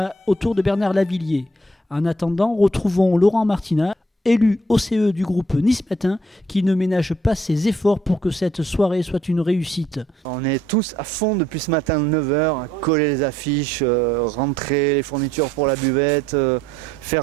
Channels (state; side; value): normal; both; correlation 0.67